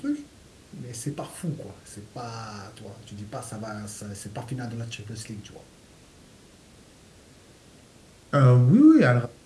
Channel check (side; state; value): both; identical; correlation 1.00